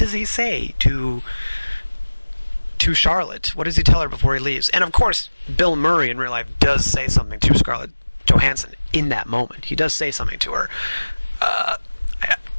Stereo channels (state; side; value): inverted; both; correlation -1.00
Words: he say to Charlotte? What does he tell her before he leaves? And of course, Bill Murray in real life does say something to Scarlett Johansson in that moment. He does say something to her.